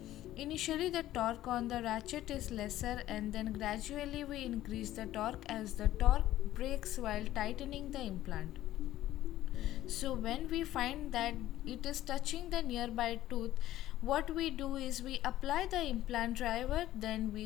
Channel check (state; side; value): quieter; right; 14.1 dB